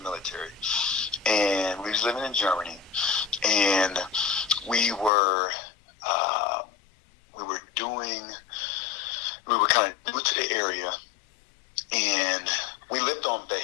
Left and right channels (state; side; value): drops out; right; at 5.1 s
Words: military, and we was living in Germany, and we were kind of new to the area, and we lived on